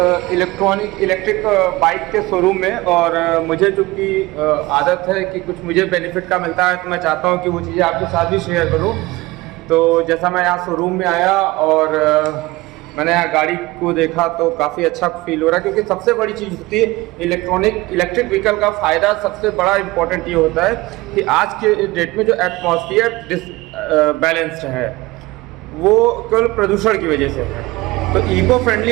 इलेक्ट्रिक बाइक के शोरूम में। और मुझे चूँकि आदत है कि कुछ मुझे बेनिफिट का मिलता है, तो मैं चाहता हूँ कि वो चीज़ें आपके साथ भी शेयर करूँ। तो जैसा मैं यहाँ शोरूम में आया और मैंने यहाँ गाड़ी को देखा तो काफ़ी अच्छा फील हो रहा है, क्योंकि सबसे बड़ी चीज़ होती है इलेक्ट्रिक व्हीकल का फ़ायदा। सबसे बड़ा इम्पोर्टेंट ये होता है कि आज के डेट में जो एटमॉस्फेयर बैलेंस्ड है वो केवल प्रदूषण की वजह से है। तो इको फ्रेंडली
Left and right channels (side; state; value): left; quieter; 20.7 dB